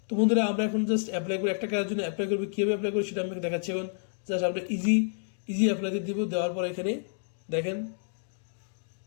তো বন্ধুরা, আমরা এখন জাস্ট অ্যাপ্লাই করি, একটা কাজের জন্য অ্যাপ্লাই করবো, কীভাবে অ্যাপ্লাই করি সেটা আমি দেখাচ্ছি। এখন জাস্ট আমরা ইজি অ্যাপ্লাইতে দিব। দেওয়ার পর এখানে দেখেন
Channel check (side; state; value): right; silent; digital silence